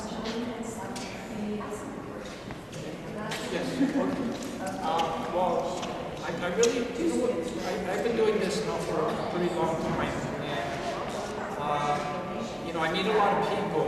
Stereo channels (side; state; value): both; identical; correlation 1.00